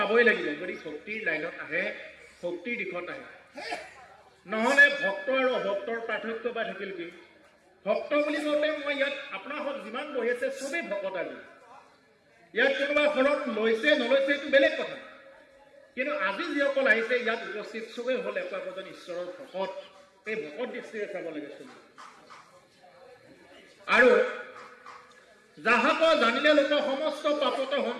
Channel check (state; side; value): identical; both; correlation 1.00